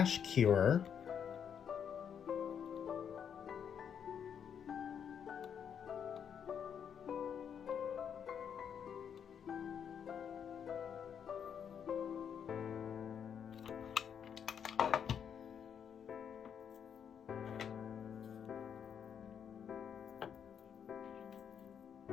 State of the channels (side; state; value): right; quieter; 7.9 dB